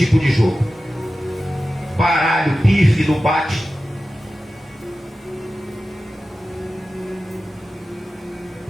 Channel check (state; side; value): normal; both; correlation 0.94